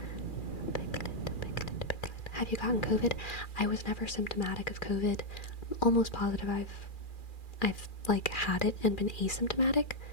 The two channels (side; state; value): right; late; 2.4 ms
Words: Piglet, piglet, piglet. Have you gotten COVID? I was never symptomatic of COVID. I'm almost positive I've like had it and been asymptomatic